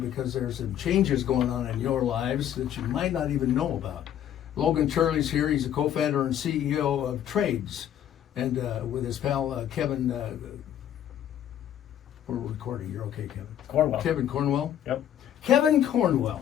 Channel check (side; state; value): right; quieter; 10.5 dB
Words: there's some changes going on in your lives that you might not even know about. Logan Turley's here. He's a co-founder and CEO of Tradez, and with his pal Kevin. We're recording. You're okay, Kevin? Cornwell. Kevin Cornwell? Yep. Kevin